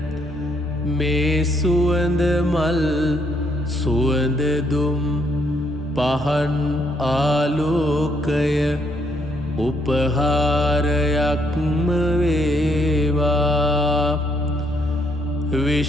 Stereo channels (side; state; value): both; normal; correlation 0.71